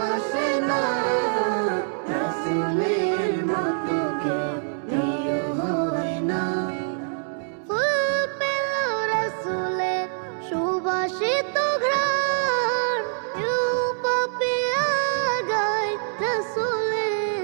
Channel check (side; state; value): left; silent; 62 dB below the other